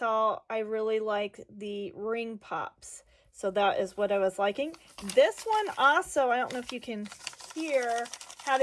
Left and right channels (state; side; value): identical; both; correlation 1.00